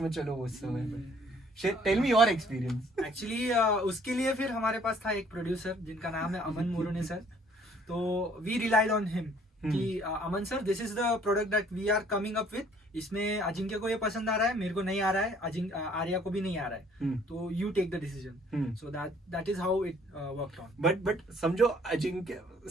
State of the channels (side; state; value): both; normal; correlation 0.59